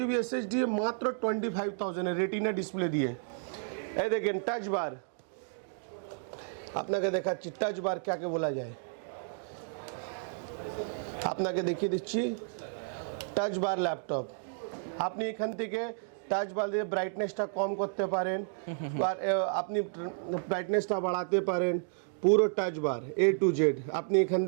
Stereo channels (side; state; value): left; silent; digital silence